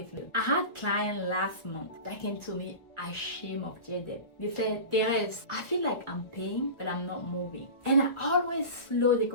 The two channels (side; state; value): right; late; 1.4 ms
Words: low. I had a client last month that came to me ashamed of their debt. They said, Therese, I feel like I'm paying, but I'm not moving. And I always slow the